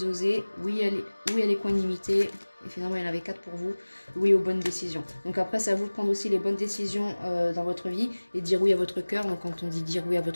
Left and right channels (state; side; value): inverted; both; correlation -1.00